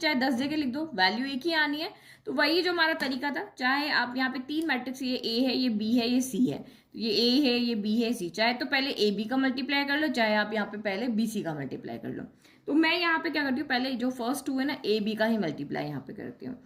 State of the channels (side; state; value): both; identical; correlation 1.00